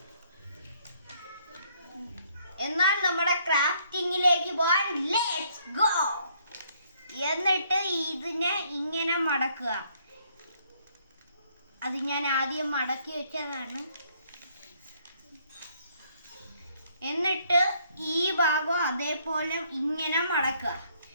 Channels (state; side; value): inverted; both; correlation -0.67